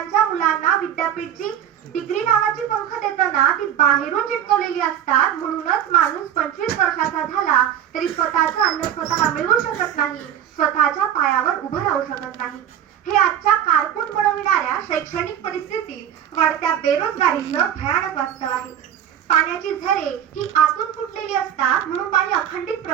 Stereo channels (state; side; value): quieter; left; 10.0 dB